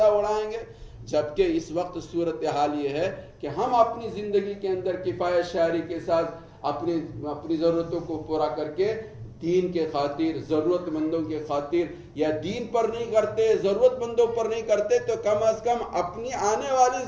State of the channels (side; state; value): both; identical; correlation 1.00